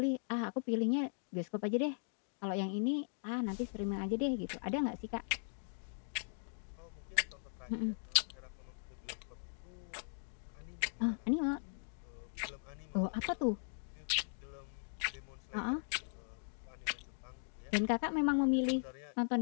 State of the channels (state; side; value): silent; right; digital silence